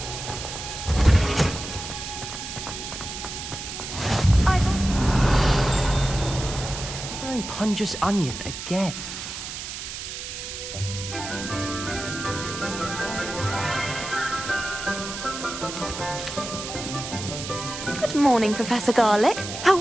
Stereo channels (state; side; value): noise; right; hiss, 8 dB below the sound